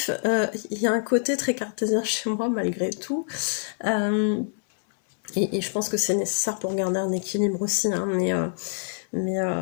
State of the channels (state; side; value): silent; right; 61 dB below the other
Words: il y a un côté très cartésien chez moi malgré tout. Et je pense que c'est nécessaire pour garder un équilibre aussi. Hein, mais